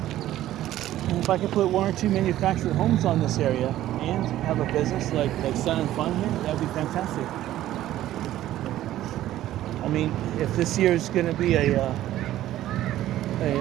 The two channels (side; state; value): left; quieter; 13.7 dB